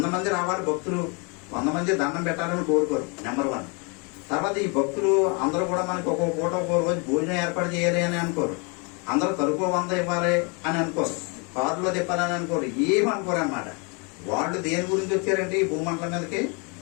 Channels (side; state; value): right; quieter; 33.0 dB